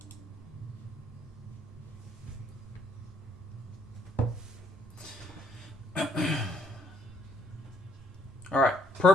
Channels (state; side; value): normal; both; correlation 0.67